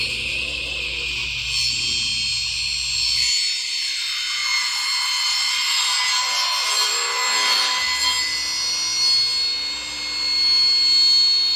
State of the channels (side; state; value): both; identical; correlation 1.00